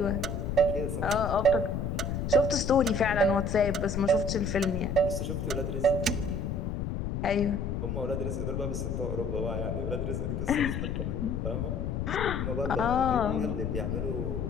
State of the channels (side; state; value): left; noise; rumble, 2 dB below the sound